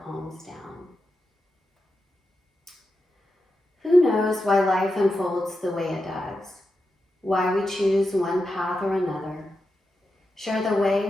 palms down. Who knows why life unfolds the way it does? Why we choose one path or another? Share the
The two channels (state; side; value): normal; both; correlation 0.89